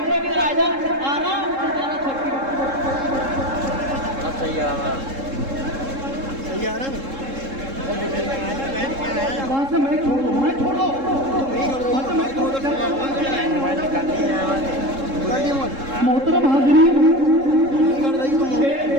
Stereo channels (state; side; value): late; left; 3.7 ms